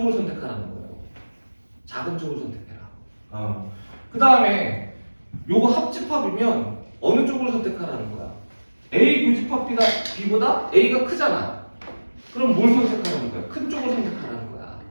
선택하라는 거예요. 작은 쪽을 선택해라. 그 다음에 요거 합집합이면 어느 쪽을 선택하라는 거야? A 교집합 B보다 A가 크잖아. 그럼 뭘 선택하라는 거야? 큰 쪽을 선택하라는 거야.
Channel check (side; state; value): both; inverted; correlation -1.00